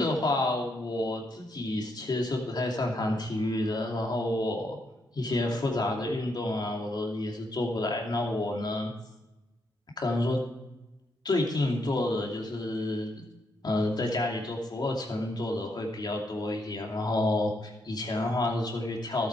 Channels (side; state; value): both; normal; correlation 0.77